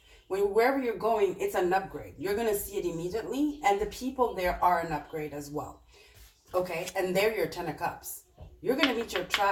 Wherever you're going, it's an upgrade. You're going to see it immediately, and the people there are an upgrade as well. Okay? And they're your 10 of Cups. You're going to meet your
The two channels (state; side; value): identical; both; correlation 1.00